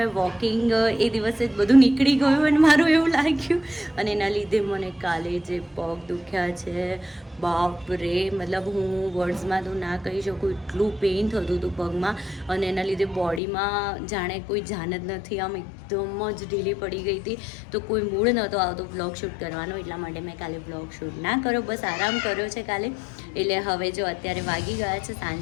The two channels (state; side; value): drops out; right; at 13.4 s